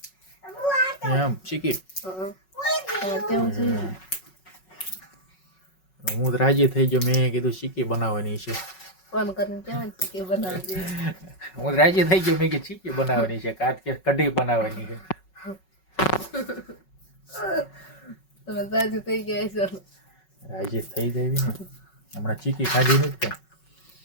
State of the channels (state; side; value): late; right; 5.4 ms